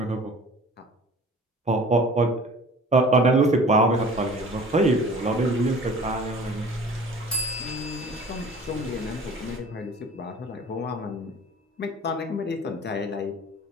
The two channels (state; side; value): normal; both; correlation 0.45